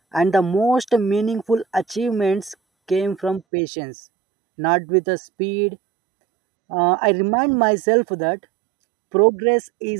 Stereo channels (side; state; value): left; drops out; at 3.4 s